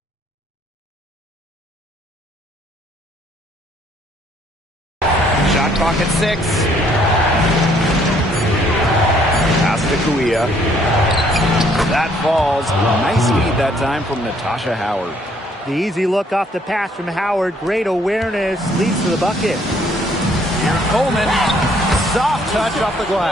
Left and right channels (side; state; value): both; normal; correlation 0.65